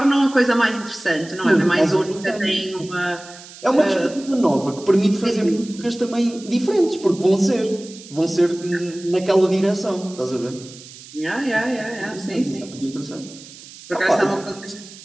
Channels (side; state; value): right; noise; hiss, 18 dB below the sound